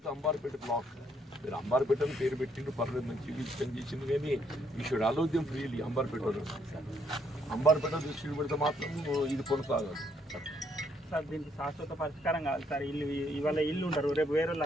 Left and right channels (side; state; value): both; normal; correlation 0.71